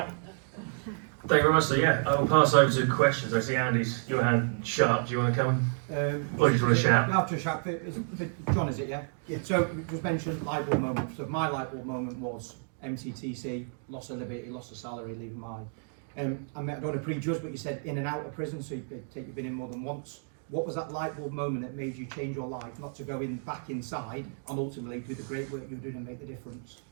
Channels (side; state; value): left; silent; 57 dB below the other